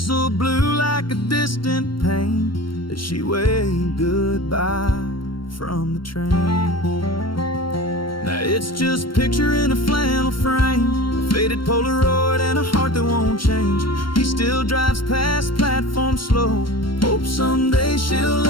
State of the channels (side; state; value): right; late; 0.73 ms